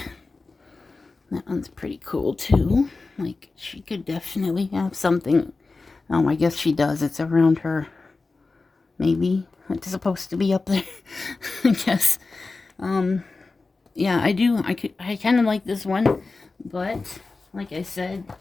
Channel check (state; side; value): quieter; right; 3.8 dB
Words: That one's pretty cool too. Like, she could definitely have something. Oh, I guess she does. It's around her. Maybe it's supposed to be up there. I guess. Yeah, I do. I kind of like this one, but like I said,